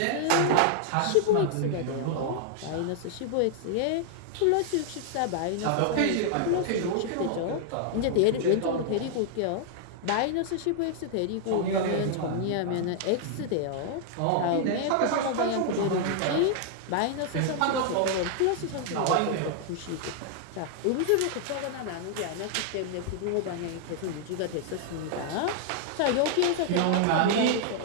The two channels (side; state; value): both; different; correlation -0.01